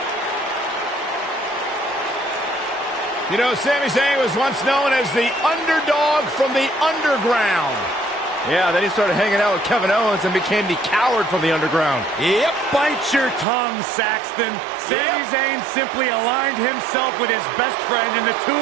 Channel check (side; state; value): left; drops out; at 13.5 s